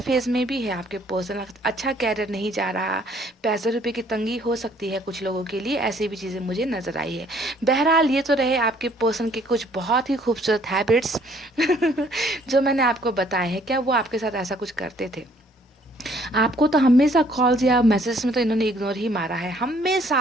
में भी है। आपके पर्सन अच्छा कैरियर नहीं जा रहा, पैसे रुपये की तंगी हो सकती है कुछ लोगों के लिए, ऐसी भी चीज़ें मुझे नज़र आई है। बहरहाल ये तो रहे आपके पर्सन के कुछ बहुत ही खूबसूरत हैबिट्स जो मैंने आपको बताए हैं। क्या वो आपके साथ ऐसा कुछ करते थे? आपको तो हमेशा कॉल्स या मैसेज में तो इन्होंने इग्नोर ही मारा है, हमेशा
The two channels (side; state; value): both; normal; correlation 0.62